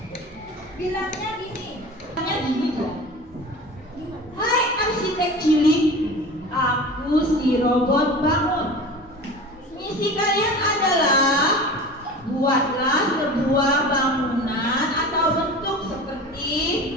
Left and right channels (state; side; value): normal; both; correlation 0.36